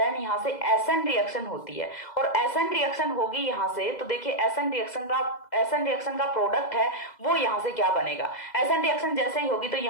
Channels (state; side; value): late; right; 2.0 ms